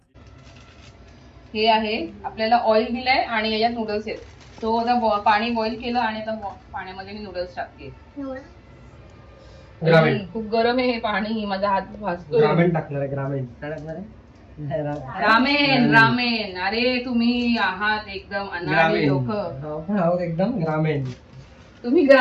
हे आहे, आपल्याला ऑइल दिलंय आणि याच्यात नूडल्स आहेत. तो आता पाणी बॉईल केलं आणि आता पाण्यामध्ये मी नूडल्स टाकते. ग्रामीण. खूप गरम आहे हे पाणी, माझा हात भाजतो. ग्रामीण टाकणार आहे. ग्रामीण काय टाकणार आहे? Ramen ramen. अरे तुम्ही आहात एकदम अनाडी लोक. आहोत एकदम ग्रामीण. तुम्ही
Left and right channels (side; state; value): both; identical; correlation 1.00